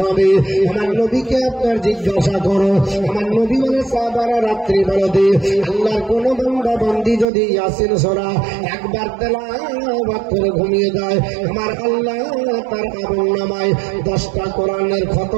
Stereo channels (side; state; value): left; drops out; at 7.2 s